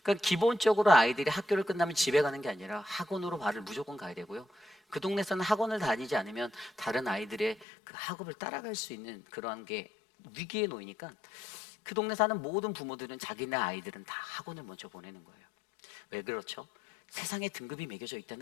그러니까 기본적으로 아이들이 학교를 끝나면 집에 가는 게 아니라 학원으로 발을 무조건 가야 되고요. 그 동네에서는 학원을 다니지 않으면 다른 아이들의 그 학업을 따라갈 수 있는 그러한 게 위기에 놓이니까 그 동네 사는 모든 부모들은 자기네 아이들은 다 학원을 먼저 보내는 거예요. 왜 그렇죠? 세상에 등급이 매겨져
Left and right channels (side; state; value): right; drops out; at 7.7 s